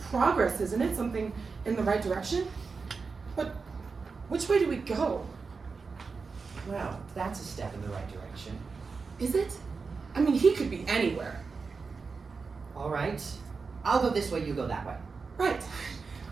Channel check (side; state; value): left; quieter; 4.7 dB